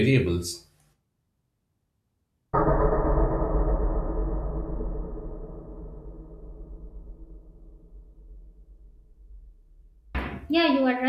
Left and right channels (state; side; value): identical; both; correlation 1.00